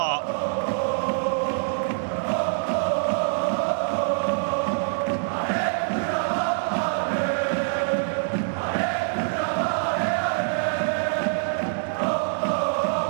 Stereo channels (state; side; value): silent; left; digital silence